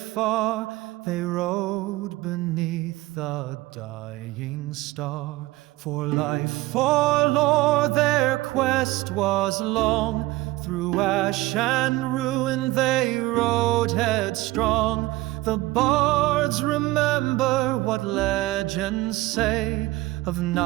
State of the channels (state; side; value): quieter; left; 19.0 dB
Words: they rode beneath a dying star. For life, for lore, their quest was long. Through ash and ruin they rode headstrong. The bards remember what legends say of